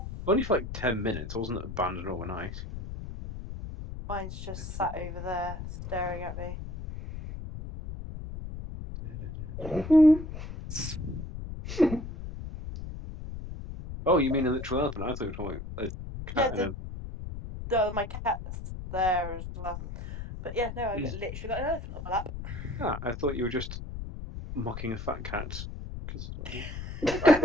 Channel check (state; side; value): noise; left; rumble, 8 dB below the sound